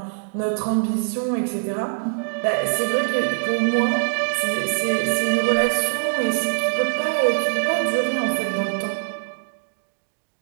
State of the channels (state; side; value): silent; left; digital silence